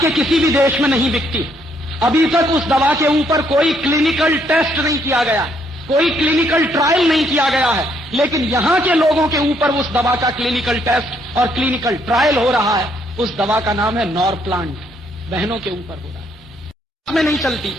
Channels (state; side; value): normal; both; correlation 0.70